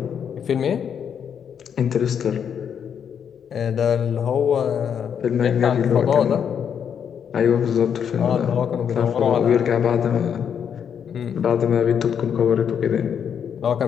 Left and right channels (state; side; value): quieter; right; 7.9 dB